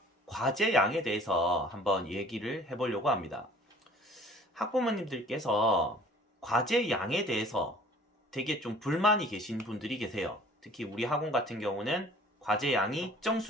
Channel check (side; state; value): both; normal; correlation 0.51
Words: 과제 양에 대해서 한번 얘기를 해보려고 합니다. 학부모님들께서 과제 양에 대해서 되게 좀 불만이 계신 분들이 계세요. 특히 우리 학원 같은 경우는 과제 양이 특정